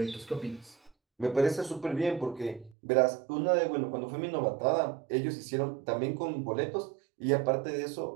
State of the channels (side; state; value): left; drops out; at 2.8 s